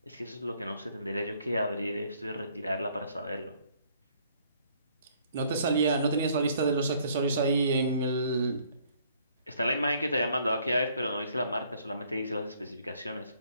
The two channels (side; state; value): both; inverted; correlation -0.63